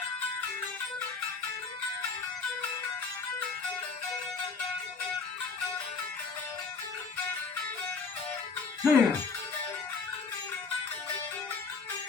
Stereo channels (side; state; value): right; quieter; 4.8 dB